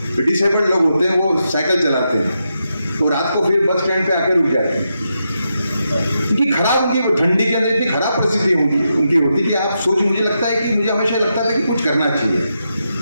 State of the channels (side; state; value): both; inverted; correlation -0.85